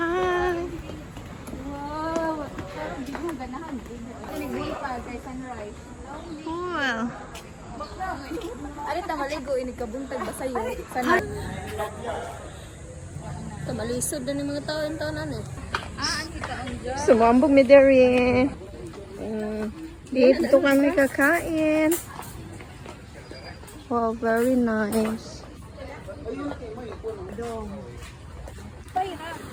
Cool. Ano ta maligo ini kabuntag ba sayo? Sana. Malisod na yung mga taon-taonan Sumambog mi dere. Dito kami kakain. Wow, very nice.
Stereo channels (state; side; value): identical; both; correlation 1.00